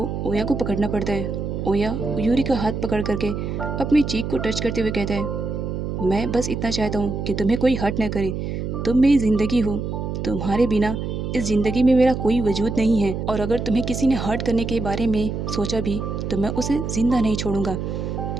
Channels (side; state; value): right; noise; hum, 4 dB below the sound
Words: ओया को पकड़ना पड़ता है। ओया यूरी का हाथ पकड़ करके अपनी चीख को टच करते हुए कहता है मैं बस इतना चाहता हूँ कि तुम्हें कोई हर्ट न करे, तुम मेरी ज़िंदगी हो, तुम्हारे बिना इस ज़िंदगी में मेरा कोई वजूद नहीं है, और अगर तुम्हें किसी ने हर्ट करने के बारे में सोचा भी तो मैं उसे ज़िंदा नहीं छोड़ूंगा।